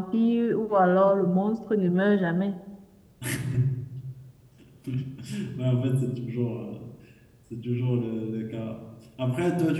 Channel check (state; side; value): identical; both; correlation 1.00